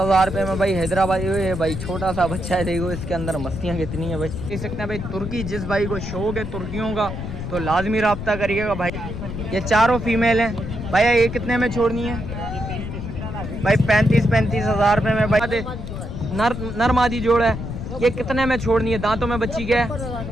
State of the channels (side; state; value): left; noise; rumble, 7 dB below the sound